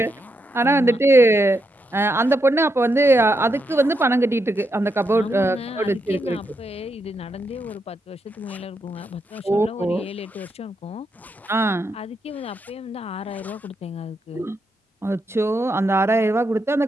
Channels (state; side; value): normal; both; correlation 0.82